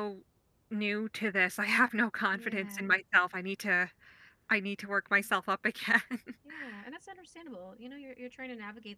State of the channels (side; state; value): both; identical; correlation 1.00